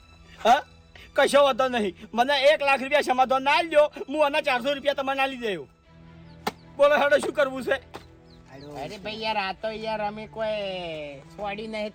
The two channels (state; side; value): identical; both; correlation 1.00